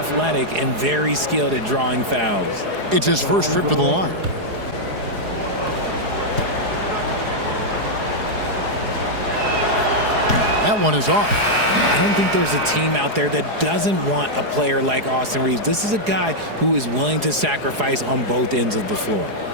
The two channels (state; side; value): late; left; 4.8 ms